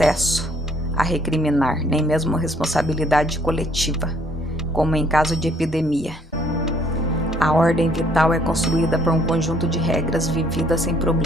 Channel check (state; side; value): normal; both; correlation 0.63